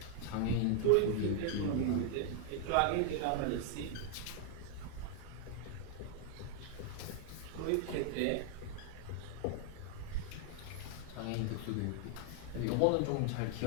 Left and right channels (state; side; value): different; both; correlation 0.00